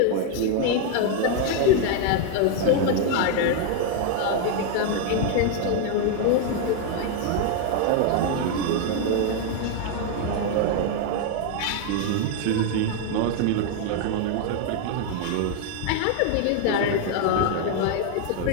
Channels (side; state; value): both; different; correlation 0.01